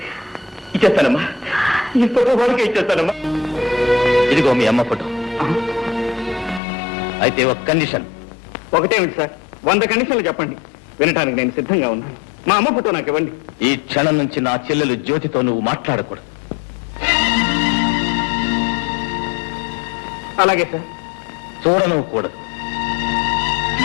ఇచ్చేస్తానమ్మా, ఈ ఫోటో వాడికే ఇచ్చేస్తానమ్మా. ఇదిగో మీ అమ్మ ఫోటో. అయితే ఒక కండిషన్. ఒకటేమిటి సార్? 100 కండిషన్లు చెప్పండి, వినటానికి నేను సిద్ధంగా ఉన్నాను. మా అమ్మ ఫోటో నాకు ఇవ్వండి. ఈ క్షణం నుంచి నా చెల్లెలు జ్యోతితో నువ్వు మాట్లాడకూడదు. అలాగే సార్. చూడను కూడదు.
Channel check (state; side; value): drops out; right; at 6.6 s